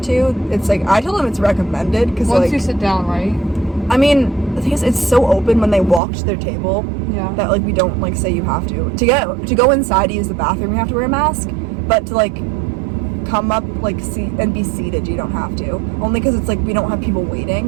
to. It's like I tell them it's recommended because once like you sit down, right? I mean, the thing is, it's so open when they walk to their table that like we don't like say you have to go inside to use the bathroom. You have to wear a mask, but to like come up like seat and be seated, you don't have to. Only because it's like we don't have people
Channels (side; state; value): left; drops out; at 6.0 s